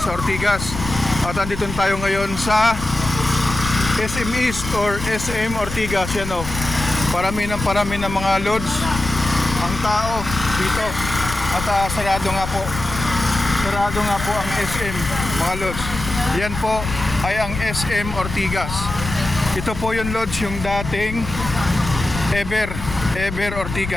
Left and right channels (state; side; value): noise; left; rumble, 8 dB below the sound